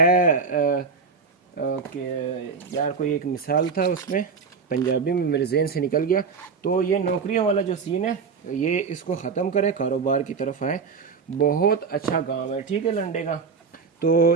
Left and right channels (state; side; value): quieter; left; 5.3 dB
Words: कि यार कोई एक मिसाल था उसमें, पंजाबी में मेरे जहन से निकल गया। तो ये नौकरियों वाला जो सीन है, ये इसको ख़त्म करें, कारोबार की तरफ आए। बहुत अच्छा गांव है, ठीक है, लंडे का। तो